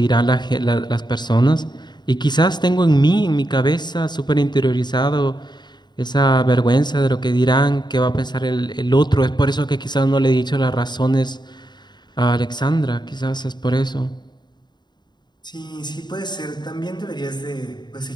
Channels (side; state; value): right; late; 0.21 ms